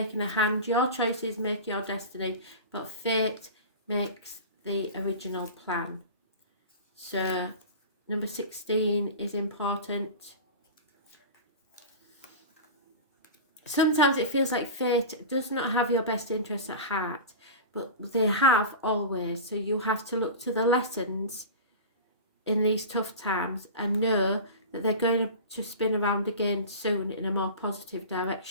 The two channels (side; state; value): both; inverted; correlation -0.30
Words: a hand. Your choices make your destiny, but fate makes the original plan. So number 16 is important. Sometimes it feels like fate does not have your best interests at heart, but they have always. So you have to look to the lessons in these tough times and know that they're going to spin around again soon in a more positive